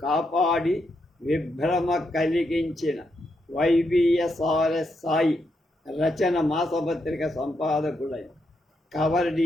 కాపాడి విభ్రమ కలిగించిన వైబిఎస్ఆర్ఎస్ సాయి రచన మాసపత్రిక సంపాదకుడైన కవర్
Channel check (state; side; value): normal; both; correlation 0.81